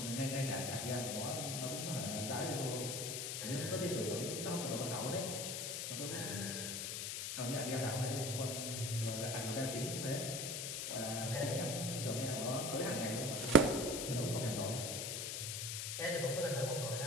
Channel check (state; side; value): noise; left; hiss, 3 dB below the sound